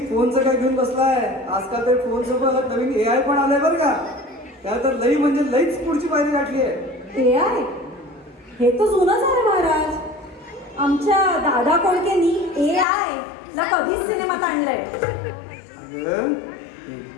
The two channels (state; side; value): drops out; right; at 12.9 s